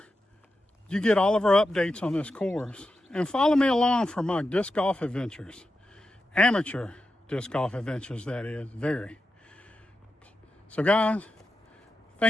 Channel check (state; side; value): normal; both; correlation 0.89